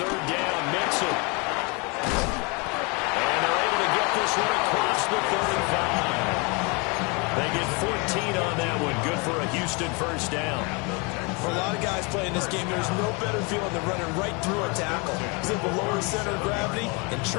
down, Mixon. And they're able to get this one across the 35. They get 14 on that one. Good for a Houston 1st down. For a lot of guys playing this game, there's no better feeling than running right through a tackle. He's able to lower his center of gravity and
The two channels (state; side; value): quieter; right; 30.4 dB